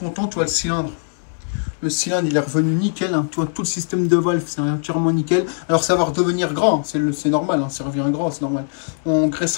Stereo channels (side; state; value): right; silent; digital silence